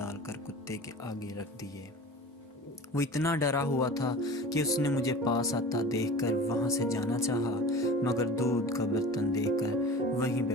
کر کتے کے آگے رکھ دیے۔ وہ اتنا ڈرا ہوا تھا کہ اس نے مجھے پاس آتا دیکھ کر وہاں سے جانا چاہا، مگر دودھ کا برتن دیکھ کر وہیں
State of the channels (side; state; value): both; normal; correlation 0.37